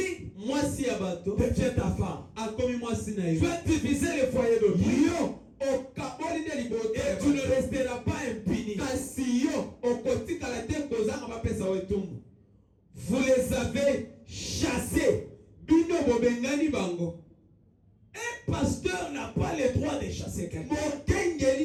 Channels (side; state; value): both; identical; correlation 1.00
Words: mwasi ya bato devient ta femme. akomi mwasi na Tu yo. as divisé le foyer d'autrui. yo okaboli nde libota Et ya tu ne bato. resteras pas impuni. kasi yo okotikala te kozanga bapesa yo etumbu. Vous les avez chassés. bino bobengani bango. Un pasteur n'a pas le droit de chasser quelqu'un.